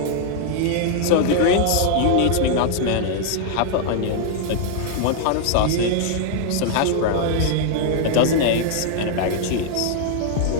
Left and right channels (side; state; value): both; different; correlation 0.00